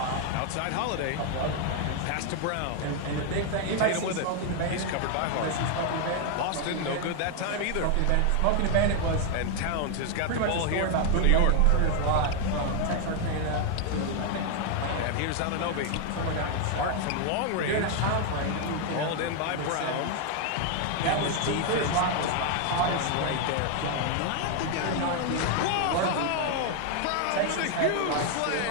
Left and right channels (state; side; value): different; both; correlation 0.00